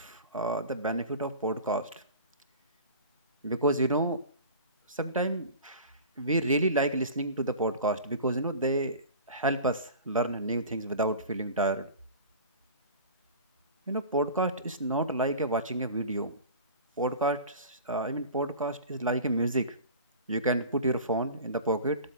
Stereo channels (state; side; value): inverted; both; correlation -0.37